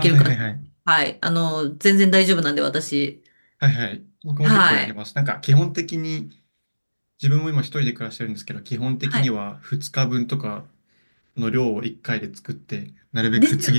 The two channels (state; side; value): inverted; both; correlation -1.00